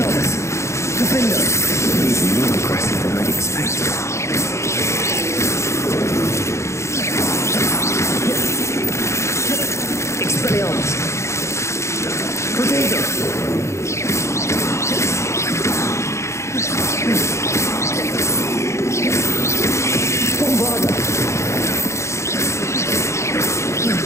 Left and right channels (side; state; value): right; late; 0.14 ms